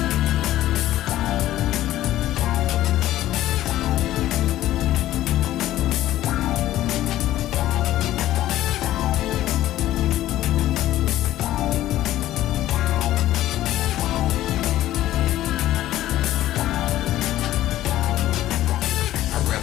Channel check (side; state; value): right; quieter; 14.1 dB